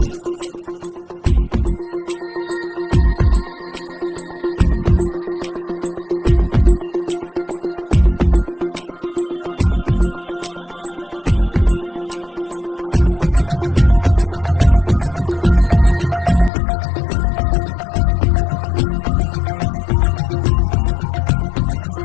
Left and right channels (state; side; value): drops out; right; at 16.5 s